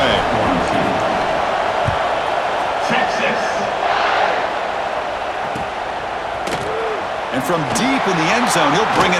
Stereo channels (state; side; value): identical; both; correlation 1.00